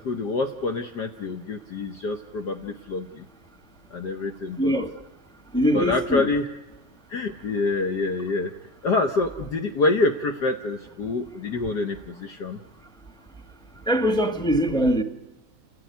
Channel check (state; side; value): normal; both; correlation 0.34